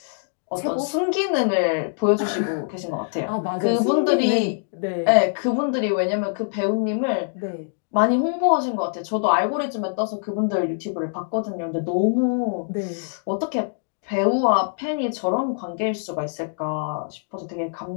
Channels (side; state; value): right; silent; digital silence